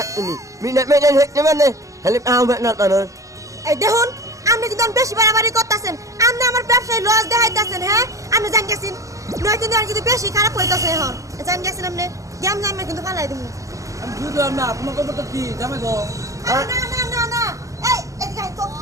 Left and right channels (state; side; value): late; left; 0.16 ms